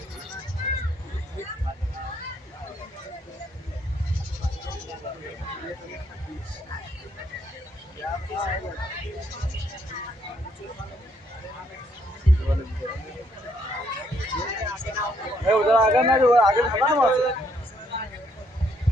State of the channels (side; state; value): both; normal; correlation 0.70